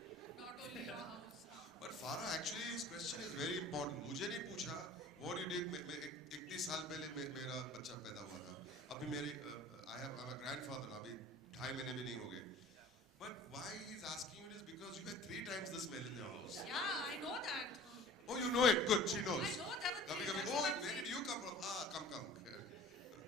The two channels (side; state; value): both; normal; correlation 0.44